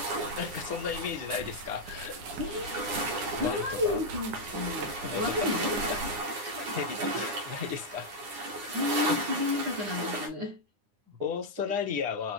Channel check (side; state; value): left; late; 9.8 ms